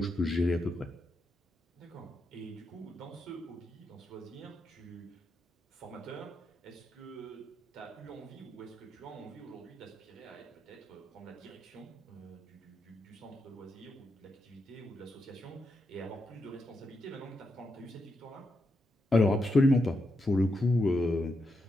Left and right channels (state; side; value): normal; both; correlation 0.84